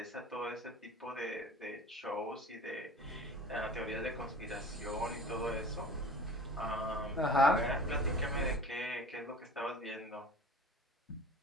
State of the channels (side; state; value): both; normal; correlation 0.41